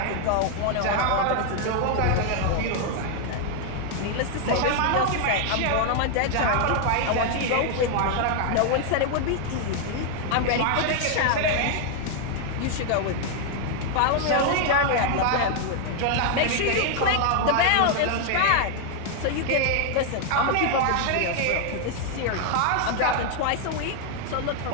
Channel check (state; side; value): different; both; correlation 0.00